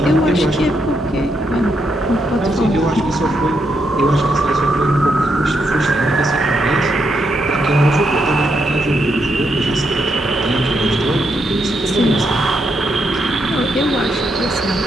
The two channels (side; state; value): both; normal; correlation 0.80